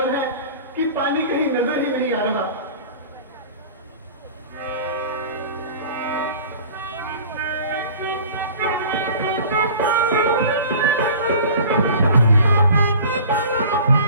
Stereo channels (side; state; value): both; inverted; correlation -0.42